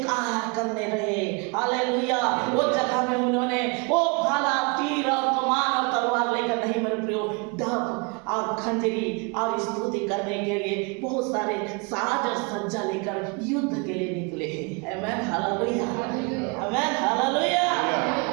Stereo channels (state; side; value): quieter; left; 31.5 dB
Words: करने रहे। हालेलुया। वो जगह में उन्होंने वो भाला, तीर और कमान और तलवार लेकर नहीं मेरे प्रियो, डब और खंजरी और स्तुति करने के लिए बहुत सारे साज और सज्जा लेकर युद्ध के लिए निकले हैं। आमीन, हालेलुया। आमीन, हालेलुया।